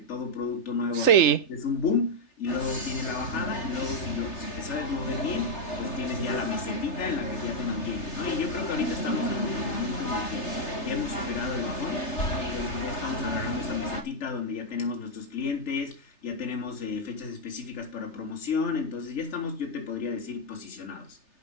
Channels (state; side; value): late; right; 3.3 ms